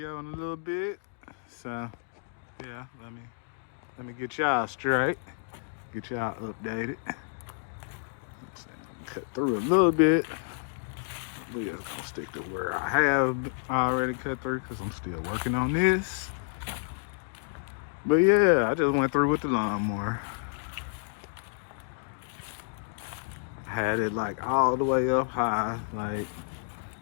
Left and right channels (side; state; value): right; silent; digital silence